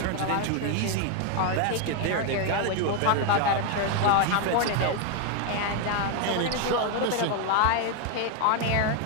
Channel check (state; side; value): different; both; correlation 0.01